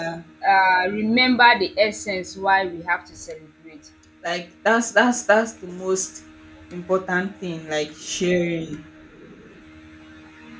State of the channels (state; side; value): identical; both; correlation 1.00